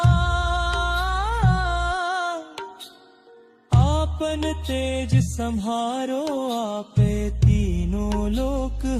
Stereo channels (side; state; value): both; identical; correlation 1.00